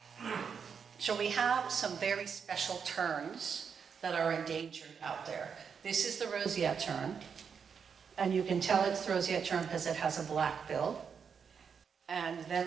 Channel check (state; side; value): quieter; left; 6.6 dB